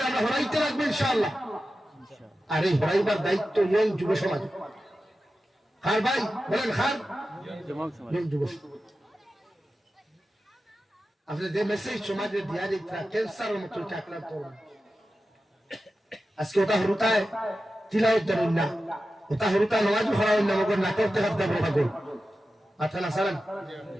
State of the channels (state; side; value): normal; both; correlation 0.93